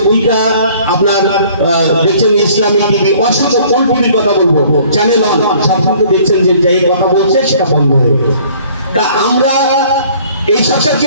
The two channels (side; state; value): both; inverted; correlation -0.55